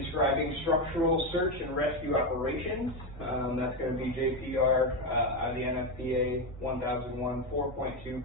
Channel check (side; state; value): both; normal; correlation 0.11